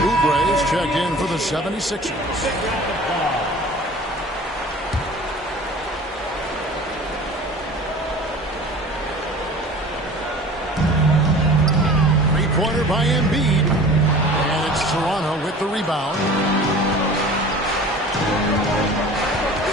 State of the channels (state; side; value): normal; both; correlation 0.42